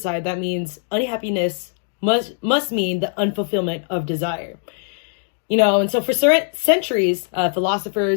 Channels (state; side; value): silent; right; digital silence